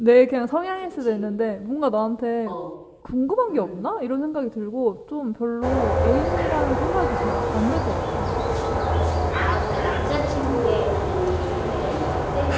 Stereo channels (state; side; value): identical; both; correlation 1.00